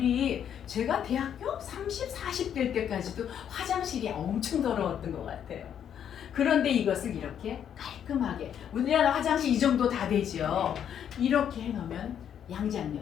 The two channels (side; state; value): right; quieter; 9.1 dB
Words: 제가 대학교 30, 40대 때까지도 화장실이 엄청 더러웠던 것 같아요. 그런데 이것을 이렇게 깔끔하게, 우리나라 화장실 이 정도 다 되죠. 이렇게 해놓으면